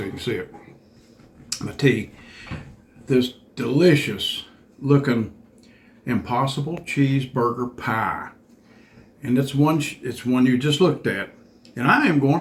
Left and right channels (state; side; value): identical; both; correlation 1.00